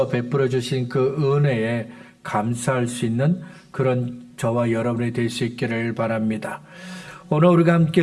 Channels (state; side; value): identical; both; correlation 1.00